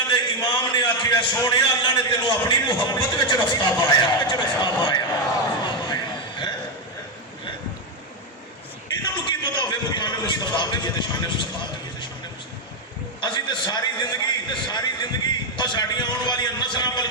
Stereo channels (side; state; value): both; normal; correlation 0.05